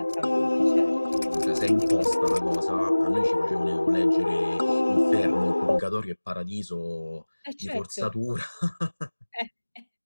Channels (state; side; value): inverted; both; correlation -1.00